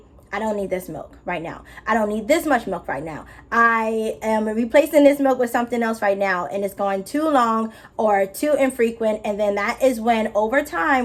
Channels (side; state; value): both; identical; correlation 1.00